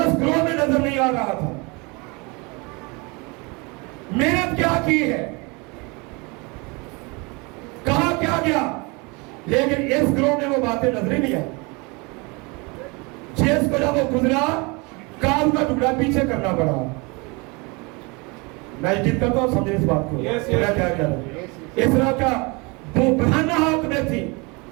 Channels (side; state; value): left; quieter; 28.2 dB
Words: ग्रोह में नजर नहीं आ रहा था। मेहनत क्या की है, कहा क्या गया, लेकिन इस ग्रोह में वो बातें नजर ही नहीं आई। जिसको जब वो गुजरा, काम का टुकड़ा पीछे करना पड़ा। मैं जिद करता हूं, समझे इस बात को। क्या क्या क्या इस तरह का वो बहाना हाथ में थी।